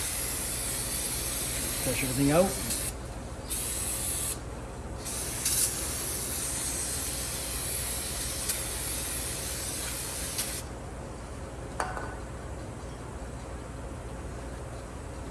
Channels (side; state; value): both; identical; correlation 1.00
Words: Flush everything out.